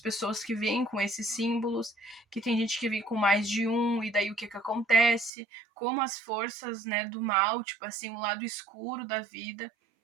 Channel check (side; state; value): left; drops out; at 5.3 s